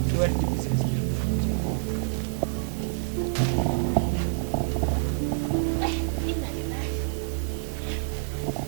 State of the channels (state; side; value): silent; left; digital silence